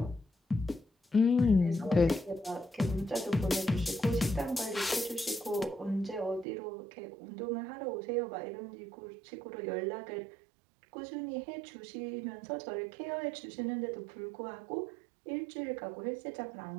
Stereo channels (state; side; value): drops out; left; at 6.5 s